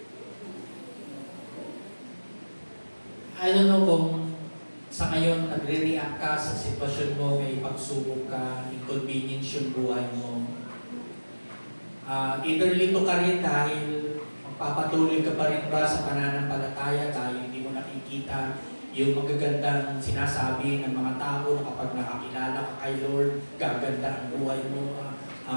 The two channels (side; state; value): both; inverted; correlation -1.00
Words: I don't know kung sa ngayon nagre-react ka sa sitwasyon mo, may pagsubok ka, inconvenience yung buhay mo. Either lito ka rin dahil magpapatuloy ka pa rin ba sa pananampalataya dahil hindi mo nakikita yung magagandang sinasabi ng mga tao na kapag nakakilala ka kay Lord, gaganda ang buhay mo,